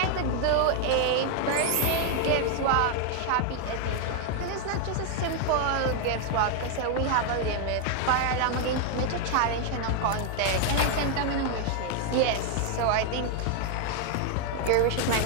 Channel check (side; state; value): both; different; correlation 0.01